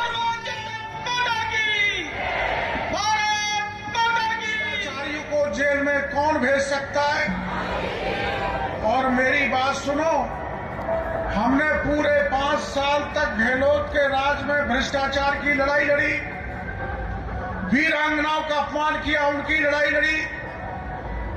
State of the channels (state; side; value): identical; both; correlation 1.00